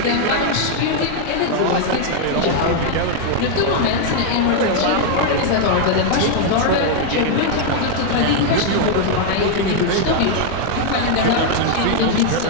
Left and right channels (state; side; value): different; both; correlation 0.00